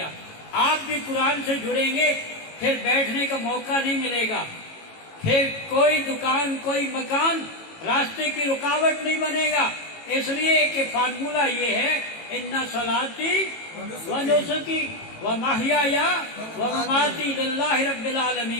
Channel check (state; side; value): late; right; 18 ms